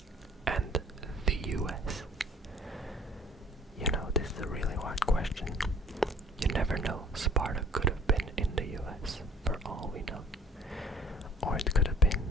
and the US. You know, this is a really hard question. You never know. Sparta could have been in the US, for all we know. Or it could have been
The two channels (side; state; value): both; normal; correlation 0.53